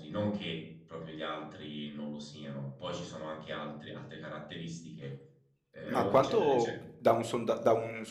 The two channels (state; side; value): identical; both; correlation 1.00